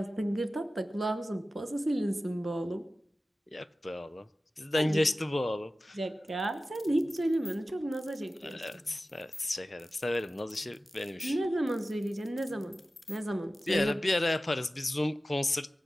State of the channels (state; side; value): normal; both; correlation 0.95